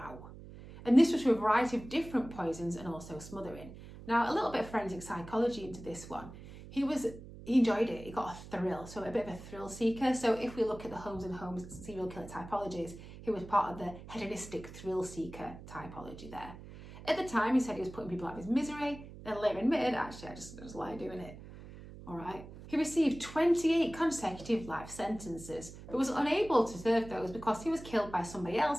And this was through a variety of different poisons and also smothering. Now, a little bit of forensic psychology into this one. He enjoyed it. He got a thrill, so a bit of a thrill seeker. So if we look at the Holmes and Holmes serial killer typologies, he was part of the hedonistic thrill seeker typology there. At the time, he said he was putting people out of his misery. and later admitted, actually, I just like doing it. All right. He received 28 consecutive life sentences, but was unable to serve those because he was killed by somebody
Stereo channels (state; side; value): noise; right; hum, 15 dB below the sound